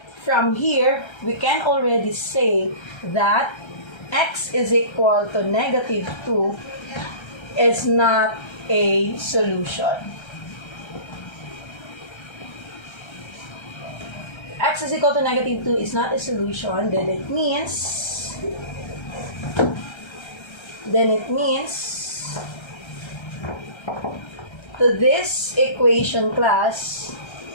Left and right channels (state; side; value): late; right; 1.3 ms